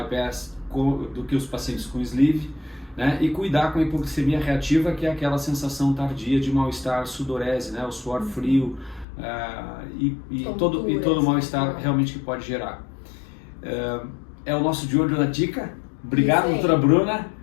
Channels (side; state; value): right; drops out; at 9.1 s